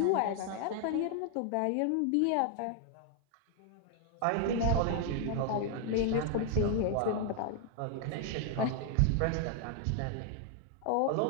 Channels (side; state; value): both; different; correlation 0.00